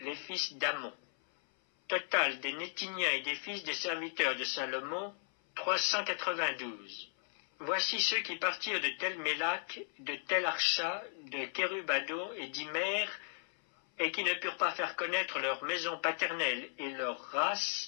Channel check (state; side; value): silent; right; 54 dB below the other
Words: fils d'Amon. Total des Nétiniens et des fils des serviteurs de Salomon, 392. Voici ceux qui partirent de Tel Mélak, de Tel Archa, de Kérubadon et d'Imer, et qui ne purent pas faire connaître leur maison paternelle et leur